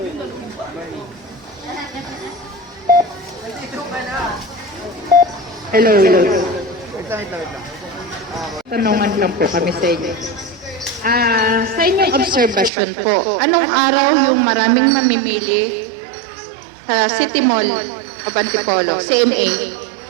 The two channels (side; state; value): left; drops out; at 12.7 s